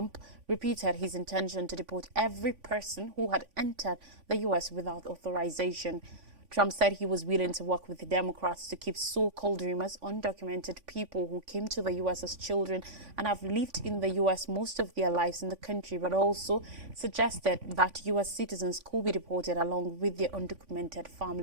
repeated his intention to deport every person who had entered the U.S. without authorization. Trump said he was willing to work with the Democrats to keep so-called dreamers, undocumented people who came to the U.S. as children and have lived in the U.S. most of their lives in the country, but also suggested that U.S. citizens could be deported along with their undocumented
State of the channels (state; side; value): late; left; 3.5 ms